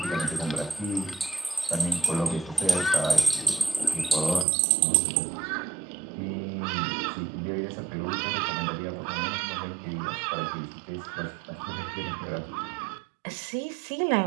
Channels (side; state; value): left; drops out; at 4.5 s